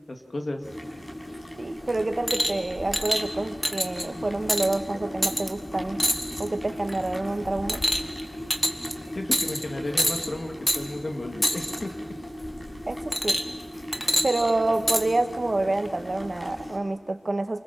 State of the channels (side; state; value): both; normal; correlation 0.98